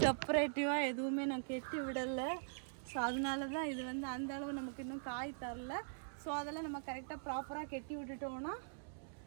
எதுவுமே நான் கெட்டி விடலை. ஸோ அதனால தான் இது வந்து அந்த அளவு நமக்கு இன்னும் காய் தரல. ஸோ அதெல்லாம் நம்ம கரெக்டாக ப்ராப்பராக கெட்டி விட்டுட்டோம்னா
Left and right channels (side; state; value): left; silent; digital silence